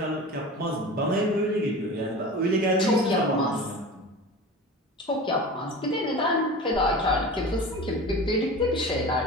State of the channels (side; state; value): both; normal; correlation 0.34